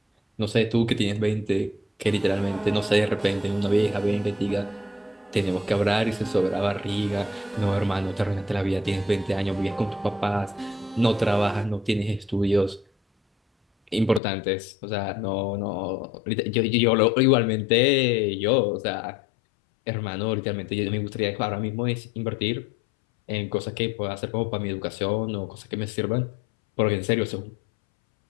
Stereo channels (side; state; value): right; drops out; at 14.2 s